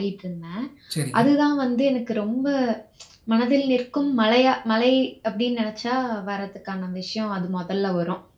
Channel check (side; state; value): both; identical; correlation 1.00